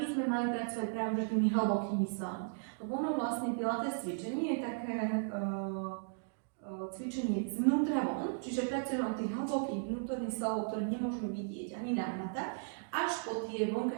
by sme mali pracovať práve tými hlbokými svalmi. Lebo ono vlastne pilates cvičenie je také cvičenie zvnútra von, čiže pracujeme od tých hlbokých vnútorných svalov, ktoré nemôžeme vidieť ani nahmatať, až po tie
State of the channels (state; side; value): silent; left; digital silence